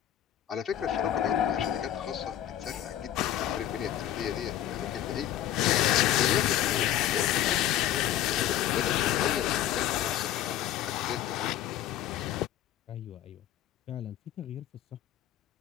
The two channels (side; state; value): right; quieter; 12.1 dB